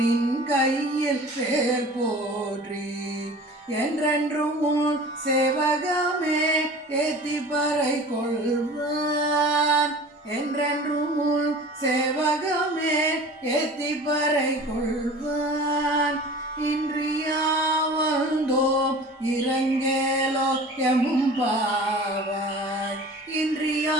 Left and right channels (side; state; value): both; normal; correlation 0.41